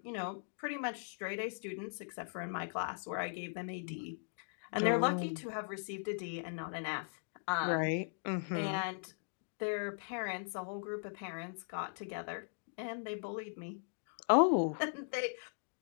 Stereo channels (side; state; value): right; silent; digital silence